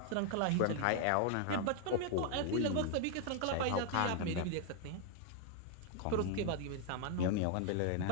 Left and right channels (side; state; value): both; different; correlation 0.00